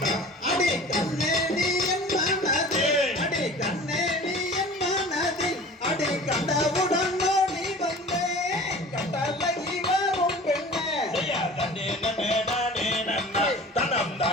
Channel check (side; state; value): both; normal; correlation 0.41